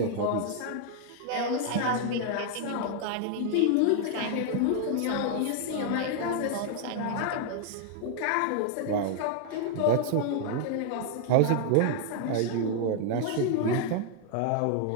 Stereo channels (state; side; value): different; both; correlation 0.00